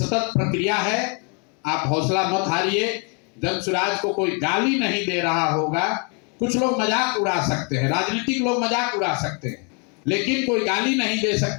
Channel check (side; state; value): right; quieter; 36.5 dB